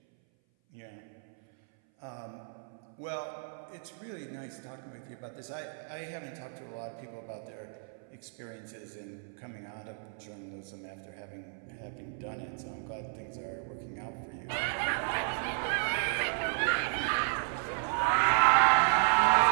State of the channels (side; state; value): left; silent; 56 dB below the other